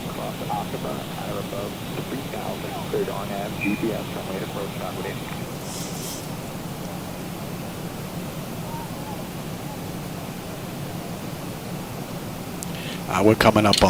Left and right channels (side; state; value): both; identical; correlation 1.00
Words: cross Cockburn, at or above 3,000, cleared on nav, GPS, runway approach, downward in. We're coming up